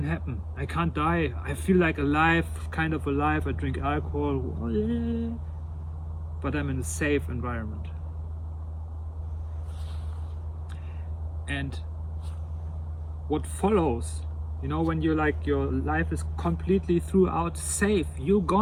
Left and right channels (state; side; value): identical; both; correlation 1.00